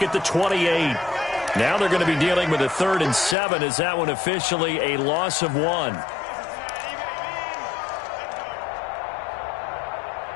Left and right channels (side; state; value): right; drops out; at 3.4 s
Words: at the 28. Now they're going to be dealing with a 3rd and 7 as that one officially a loss of 1.